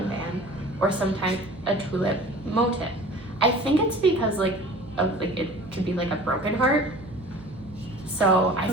band, or sometimes a tulip motif. I think it's because it could be like a broken heart. So I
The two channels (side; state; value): right; noise; hum, 19 dB below the sound